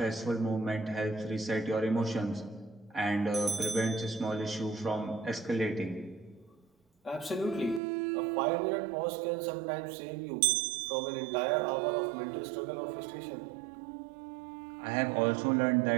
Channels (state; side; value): drops out; left; at 7.8 s